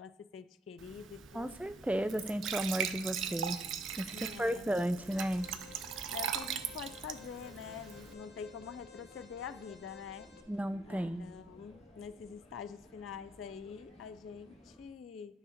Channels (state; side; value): normal; both; correlation 0.70